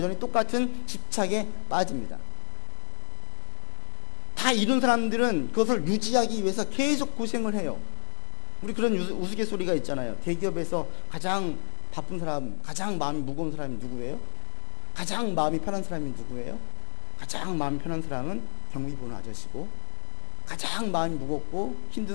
똑같은 집착에 빠집니다. 다 이룬 사람들은 그것을 유지하기 위해서 계속 고생을 해요. 우리 그런 우스갯소리가 있잖아요. 대기업에서 가장 바쁜 사람, 가장 마음이 무거운 사람이 누구예요? 가장 마음이 편한 사람이 누구예요? 가장 마음이 편한 사람은 경비 보는 아저씨고, 가장 마음이 무겁고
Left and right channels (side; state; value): right; silent; 56 dB below the other